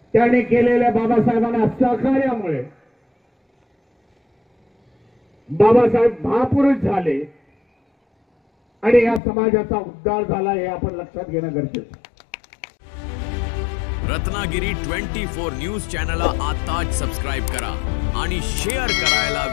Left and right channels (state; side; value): drops out; right; at 9.2 s